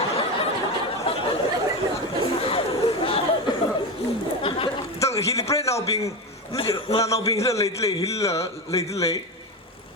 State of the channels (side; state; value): both; normal; correlation 0.18